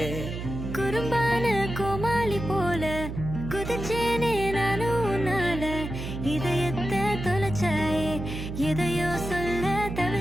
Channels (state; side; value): noise; right; hum, 7 dB below the sound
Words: குறும்பான கோமாளி போல குதிச்சேனே நானும் உன்னால. இதயத்தை தொலைச்சாயே, எதையோ சொல்ல